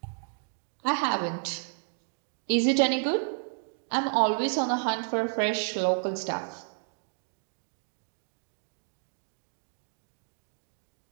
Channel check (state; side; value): silent; left; 57 dB below the other